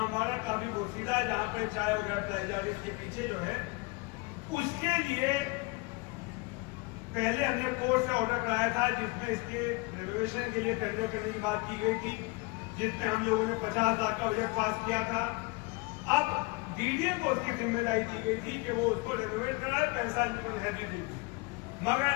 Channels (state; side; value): quieter; right; 25.9 dB